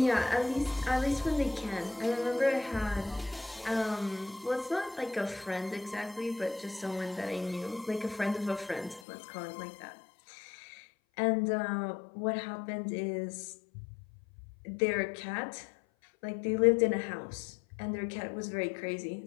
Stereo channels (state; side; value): drops out; right; at 9.0 s